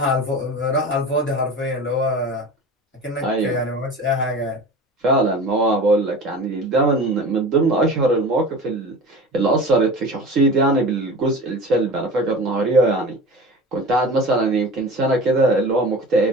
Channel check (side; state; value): both; normal; correlation 0.35